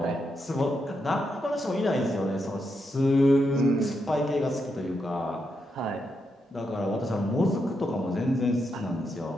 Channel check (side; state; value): both; normal; correlation 0.83